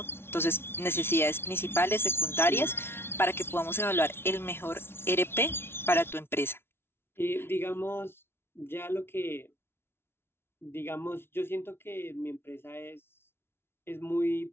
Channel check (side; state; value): right; late; 0.12 ms